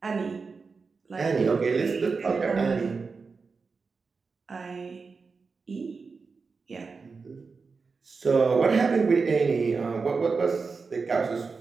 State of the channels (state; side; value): quieter; left; 4.7 dB